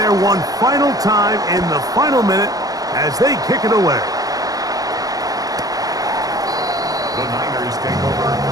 one final time in the final minute as they kick it away. The Niners take over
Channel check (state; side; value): late; left; 0.18 ms